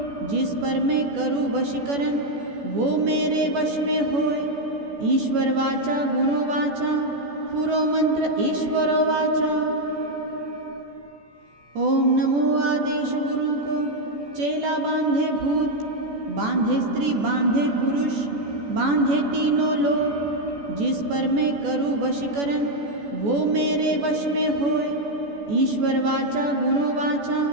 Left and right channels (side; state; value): left; late; 14 ms